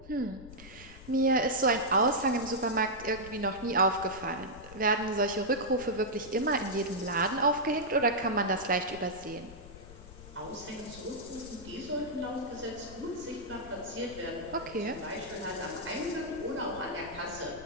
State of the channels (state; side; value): noise; left; rumble, 17 dB below the sound